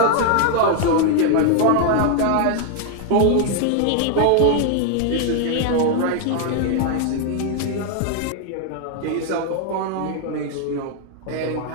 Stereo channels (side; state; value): both; different; correlation 0.00